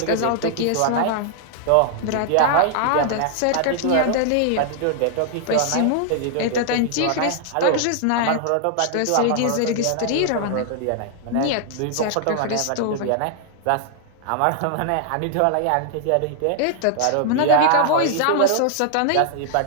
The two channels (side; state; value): both; different; correlation -0.01